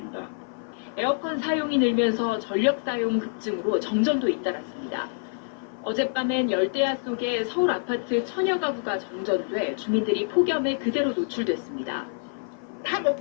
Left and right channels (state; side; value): silent; right; 56 dB below the other